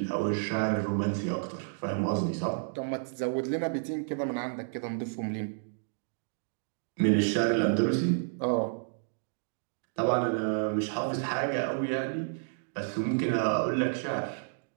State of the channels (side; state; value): left; silent; digital silence